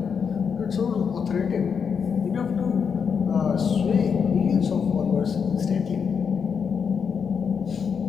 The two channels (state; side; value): quieter; right; 6.5 dB